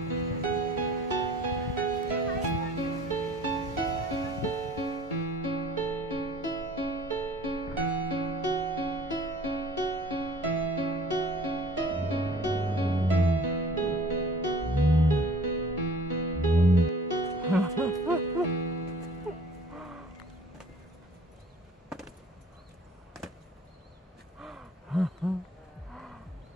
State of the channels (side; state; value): both; normal; correlation 0.51